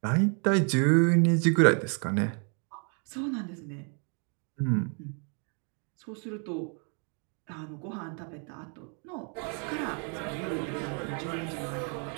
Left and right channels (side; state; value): left; quieter; 39.9 dB